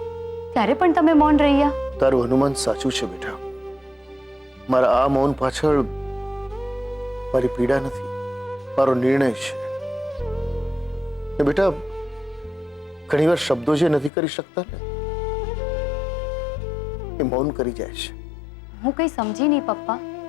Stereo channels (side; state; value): right; drops out; at 14.1 s